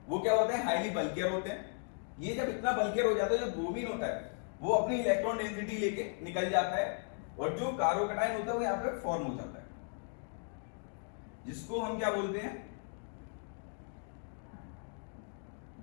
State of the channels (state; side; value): silent; right; 54 dB below the other